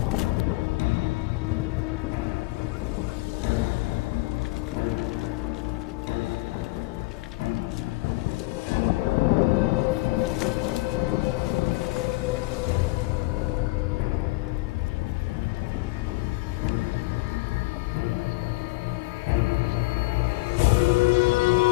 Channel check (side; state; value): right; quieter; 22.1 dB